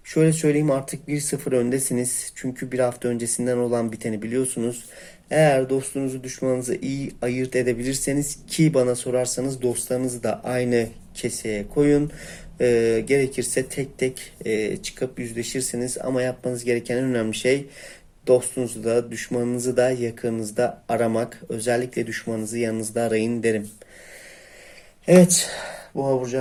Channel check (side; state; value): both; identical; correlation 1.00